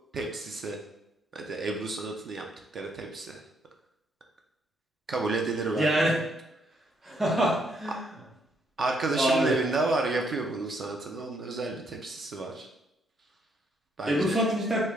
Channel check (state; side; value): normal; both; correlation 0.72